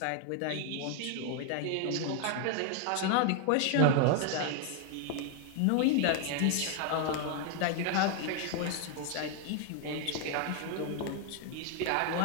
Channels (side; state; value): both; different; correlation 0.00